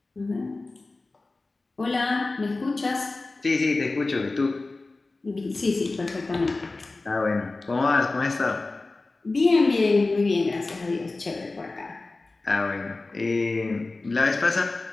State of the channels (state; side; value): quieter; right; 3.4 dB